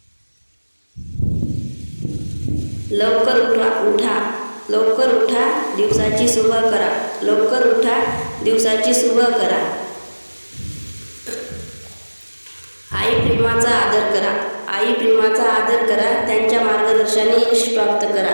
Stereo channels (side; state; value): both; inverted; correlation -1.00